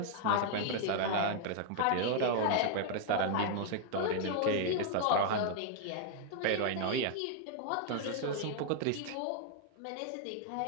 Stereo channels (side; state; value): both; different; correlation 0.00